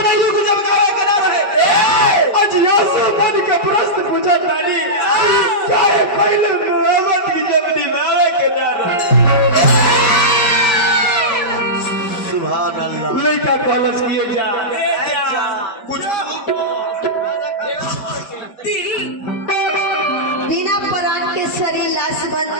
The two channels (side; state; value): right; late; 5.2 ms